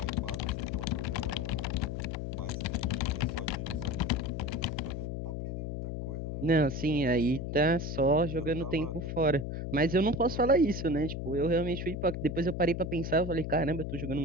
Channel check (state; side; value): noise; left; hum, 4 dB below the sound